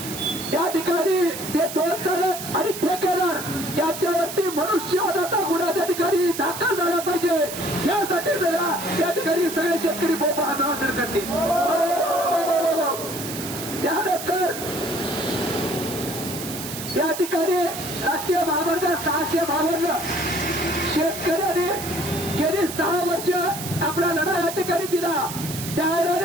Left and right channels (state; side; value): noise; right; hiss, 8 dB below the sound